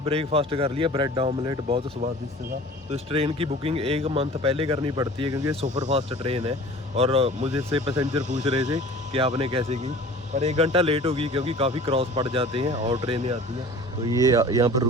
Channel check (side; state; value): both; normal; correlation 0.43